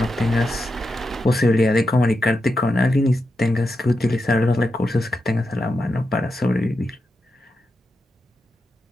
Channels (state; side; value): normal; both; correlation 0.87